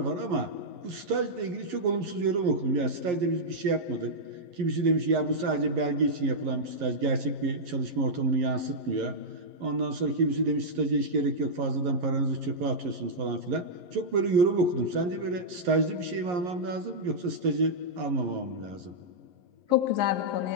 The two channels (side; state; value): left; late; 11 ms